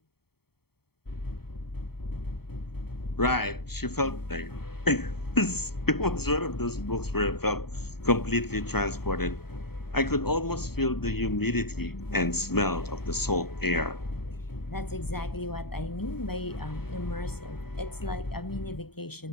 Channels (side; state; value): right; late; 0.96 ms